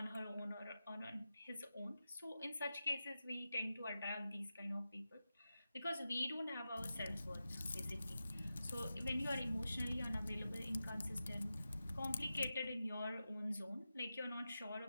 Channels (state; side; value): inverted; both; correlation -0.92